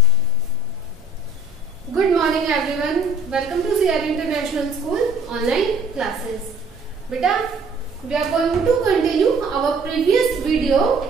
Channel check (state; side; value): normal; both; correlation 0.57